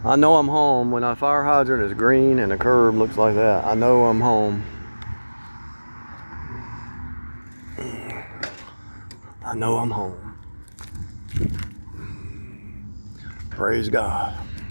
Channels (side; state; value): both; inverted; correlation -1.00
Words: I know I'm home when a fire hydrant is green and a curb looks like that. I know I'm home. I know I'm home. Praise God.